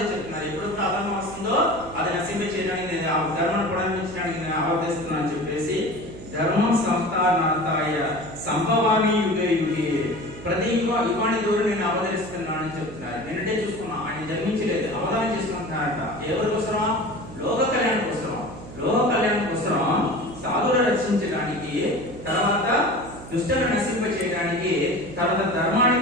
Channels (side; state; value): right; noise; hum, 14 dB below the sound